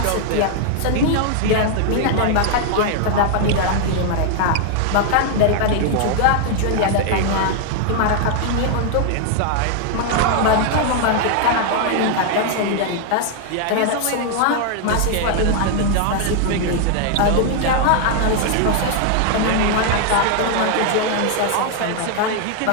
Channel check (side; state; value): both; different; correlation 0.00